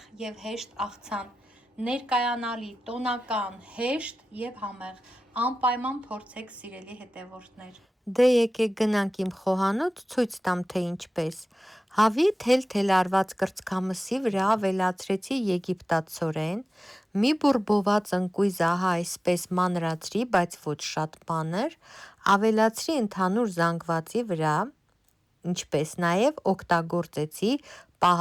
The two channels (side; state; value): both; normal; correlation 0.96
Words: և հեշտ աղցան, ներկայանալի, տոնական, հեշտ և համեղ, անպայման փորձեք սիրելի հետևորդներ։ Դե եկեք գնանք իմ խոհանոց ցույց տամ թե ինչպես։ Հավի թել-թել արված կրծքամսի վրա ավելացրեցի եգիպտացորեն, մի բուրբոված ընկույզ ահա այսպես մանրացրի, բայց ոչ շատ մանր, ավելացրի ընդհանուր զանգվածի վրա, ինչպես նաև օգտագործեցի